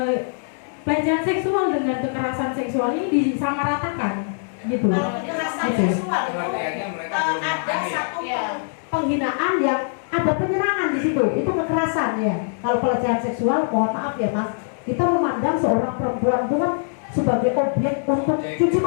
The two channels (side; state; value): right; silent; digital silence